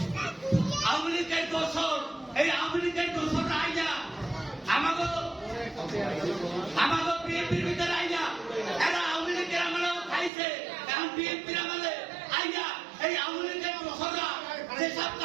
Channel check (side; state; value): left; drops out; at 10.3 s